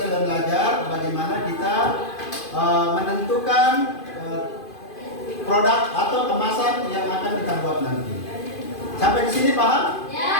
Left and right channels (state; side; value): late; right; 2.5 ms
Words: belajar bagaimana kita menentukan produk atau kemasan yang akan kita buat nanti. Sampai di sini paham?